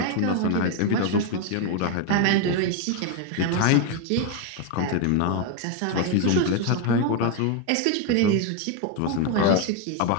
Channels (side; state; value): both; different; correlation 0.01